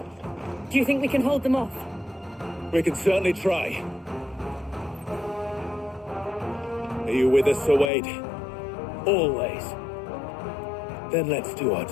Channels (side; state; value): right; drops out; at 7.9 s